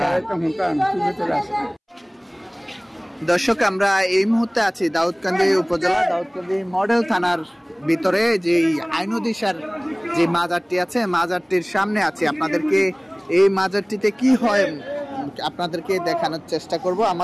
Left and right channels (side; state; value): both; identical; correlation 1.00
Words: চলে আসে। দর্শক আমরা এই মুহূর্তে আছি দাউদকান্দি উপজেলা দাউদকান্দি মডেল থানার ভিতরে যে আইনুদিশার যে মাজারটি আছে মাজারটির সামনে আছি। আপনাদেরকে এই মাজারটিতে কি হয় আপনাদেরকে দেখানোর চেষ্টা করব।